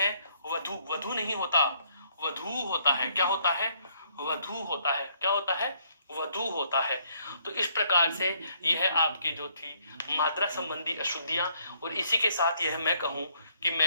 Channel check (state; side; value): inverted; both; correlation -0.68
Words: वधु, वधु नहीं होता, वधु होता है। क्या होता है, वधु होता है। क्या होता है, वधु होता है। तो इस प्रकार से यह आपकी जो थी मात्रा संबंधी अशुद्धियां, और इसी के साथ यह मैं कहूं कि